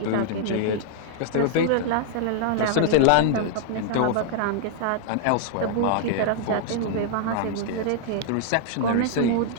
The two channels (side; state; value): both; different; correlation -0.01